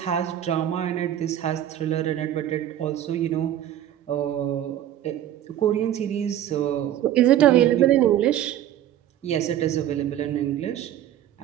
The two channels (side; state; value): left; quieter; 11.6 dB